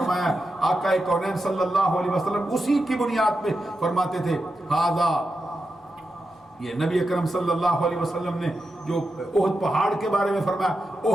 آقا کونین صلی اللہ علیہ وسلم اسی کی بنیاد پہ فرماتے تھے ہذا، یہ نبی اکرم صلی اللہ علیہ وسلم نے جو احد پہاڑ کے بارے میں فرمایا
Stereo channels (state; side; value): normal; both; correlation 0.88